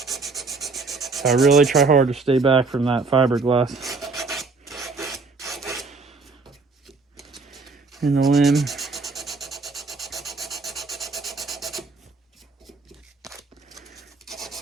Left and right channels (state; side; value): quieter; left; 4.0 dB